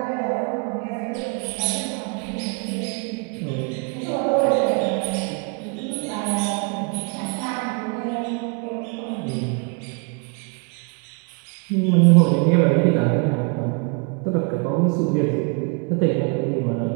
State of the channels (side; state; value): left; quieter; 35.1 dB